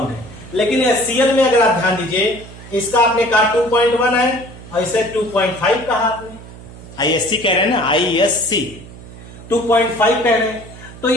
है। लेकिन Cl में अगर आप ध्यान दीजिए, इसका आपने कहा 2.1 है और इसे 2.5 कहा आपने, ISC कह रहे हैं ना, ISC 2.5 कह रहे हैं, तो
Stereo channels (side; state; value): right; noise; hum, 17 dB below the sound